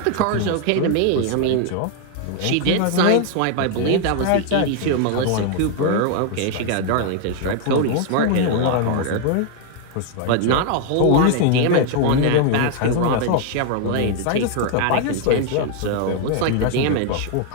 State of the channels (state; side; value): different; both; correlation 0.00